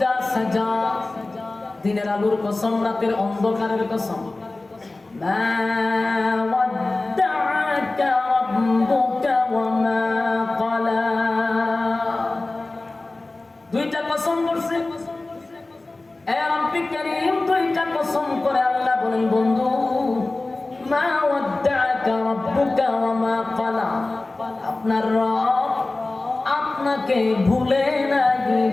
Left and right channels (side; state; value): right; quieter; 3.1 dB